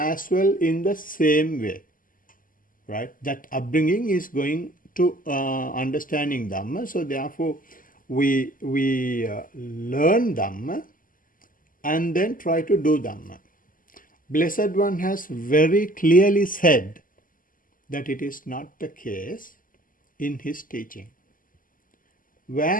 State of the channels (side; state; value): right; late; 0.40 ms